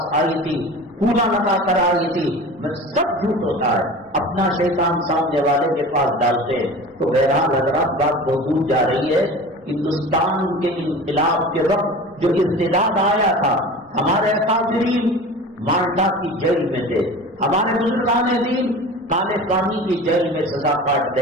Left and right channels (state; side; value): normal; both; correlation 0.36